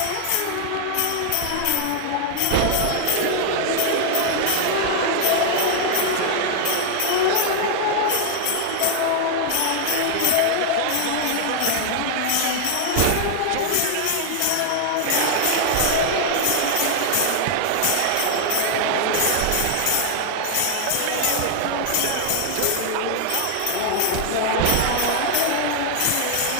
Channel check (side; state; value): both; different; correlation 0.00